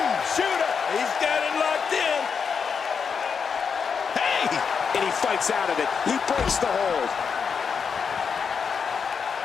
He's got it locked in. Hey! And he fights out of it. He breaks the hold.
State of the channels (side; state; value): right; quieter; 6.2 dB